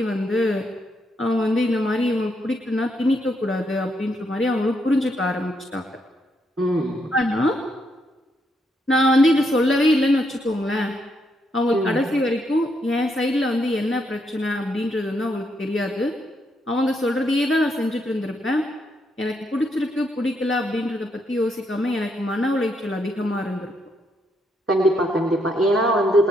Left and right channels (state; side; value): normal; both; correlation 0.77